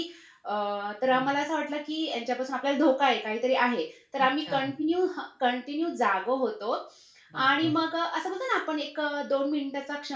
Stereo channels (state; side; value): identical; both; correlation 1.00